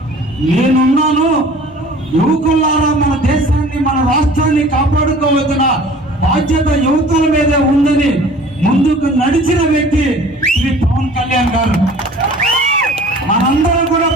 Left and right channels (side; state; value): both; normal; correlation 0.47